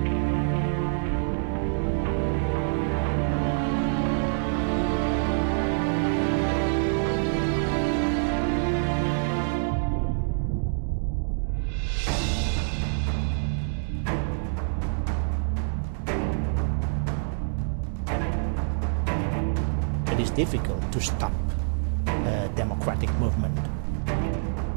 It is difficult to stop a democratic movement.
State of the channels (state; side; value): silent; left; digital silence